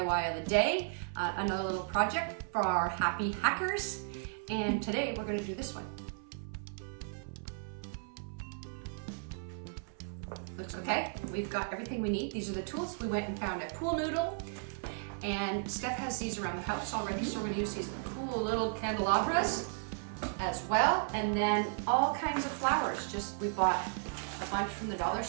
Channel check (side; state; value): left; silent; 55 dB below the other